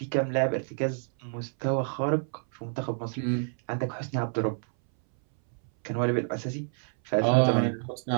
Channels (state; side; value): silent; left; 59 dB below the other